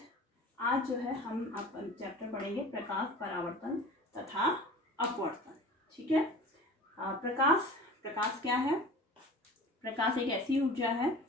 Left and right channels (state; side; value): normal; both; correlation 0.40